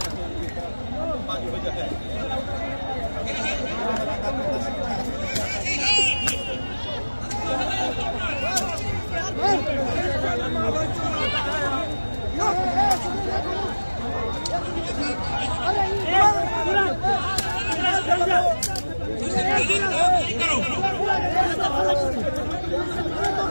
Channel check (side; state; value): both; inverted; correlation -1.00